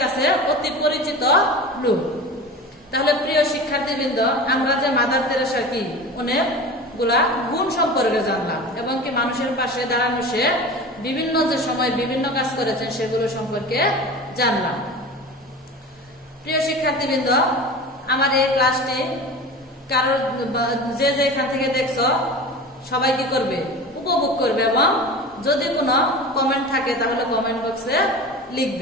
কাছে অতি পরিচিত লোক। তাহলে প্রিয় শিক্ষার্থীবৃন্দ, আমরা যে মাদার তেরেসা কি অনেকগুলা গুণ সম্পর্কে জানলাম এবং কি মানুষের পাশে দাঁড়ানো সে বিভিন্ন যে সময় বিভিন্ন কাজ করেছেন সেগুলো সম্পর্কে জানলাম। প্রিয় শিক্ষার্থীবৃন্দ, আমার এই ক্লাসটি কারোর যে এখান থেকে দেখছো সবাই কি করবে, উপভোগ করবে এবং যদি কোনো কমেন্ট থাকে তাহলে কমেন্ট বক্সে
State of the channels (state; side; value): normal; both; correlation 0.34